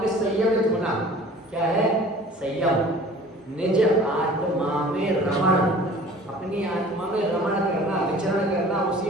संयमित होना। क्या है? संयम। निज आत्मा में रमण, अपनी आत्मा में रमण करना, विचरण करना,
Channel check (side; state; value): both; normal; correlation 0.47